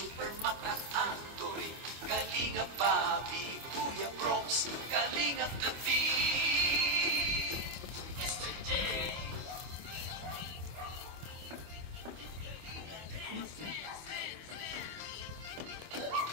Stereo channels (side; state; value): left; late; 25 ms